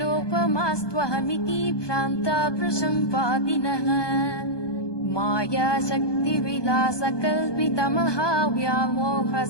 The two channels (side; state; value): right; late; 1.2 ms